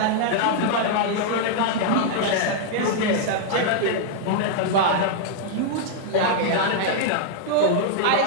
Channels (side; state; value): both; different; correlation -0.01